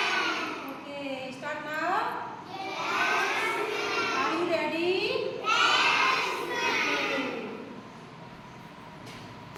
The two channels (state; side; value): identical; both; correlation 1.00